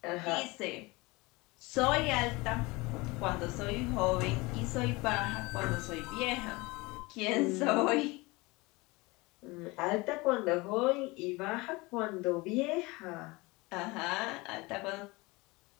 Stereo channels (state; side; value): quieter; right; 23.8 dB